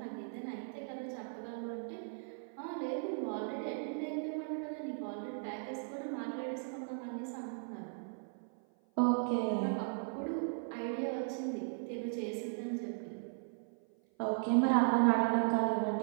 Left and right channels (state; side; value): silent; left; 53 dB below the other